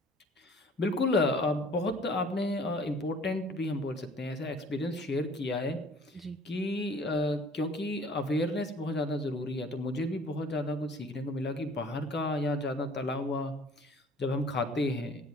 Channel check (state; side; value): normal; both; correlation 0.52